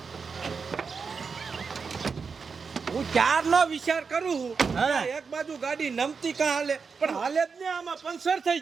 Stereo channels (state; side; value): quieter; left; 5.4 dB